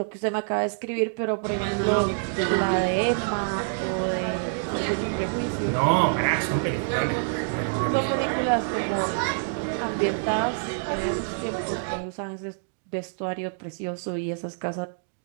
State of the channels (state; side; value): silent; left; digital silence